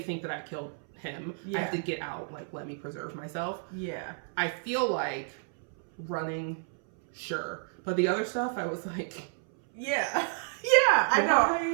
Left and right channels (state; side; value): silent; left; 57 dB below the other